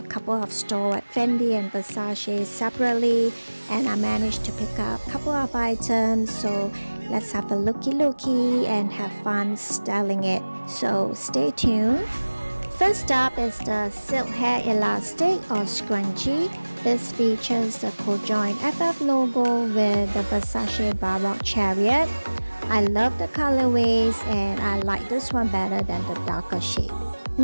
couple of stores at Fendi and Versace separately, and I managed to pick up a couple of items. So let's have a looky and have fun styling it. So stay tuned. First up is the silk hair elastic or scrunchie. This features the co-joined FF logo with the Versace Baroque chariot. I love the colorways and I like this one better than the darker shade.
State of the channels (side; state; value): both; inverted; correlation -1.00